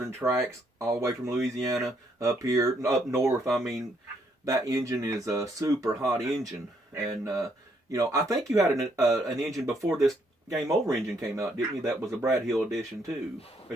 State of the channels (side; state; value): both; normal; correlation 0.72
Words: tracks all the way from Louisiana up here, up north. I mean, that engine is a super hot engine, and I think you had an engine before this Game Over engine came out, didn't you? That was a Brad Hill edition too.